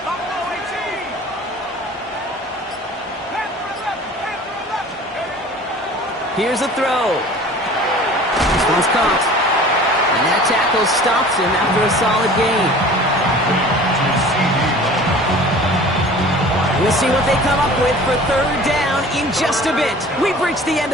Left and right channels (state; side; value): normal; both; correlation 0.44